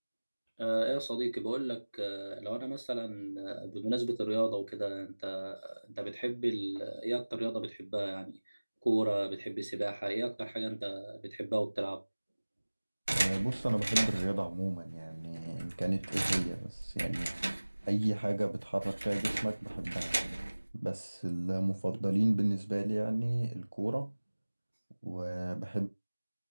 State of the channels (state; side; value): inverted; both; correlation -1.00